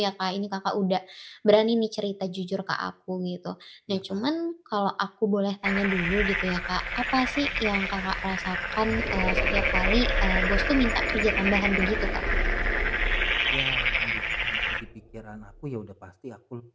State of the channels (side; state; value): both; identical; correlation 1.00